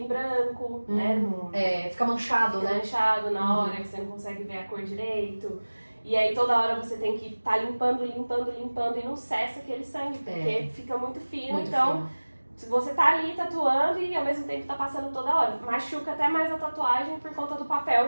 branco, né? Fica manchado, né? Fica manchado na hora que você não consegue ver a cor direito. E aí toda hora você tem que estar limpando e não cessa aquele sangue, porque fica muito fino. Muito fino. Se você tá ali tatuando e ao mesmo tempo tá passando toda hora, machuca até mais a tatuagem por conta do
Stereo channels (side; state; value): both; inverted; correlation -1.00